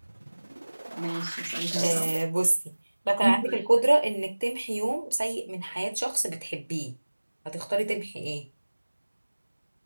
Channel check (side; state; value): both; inverted; correlation -1.00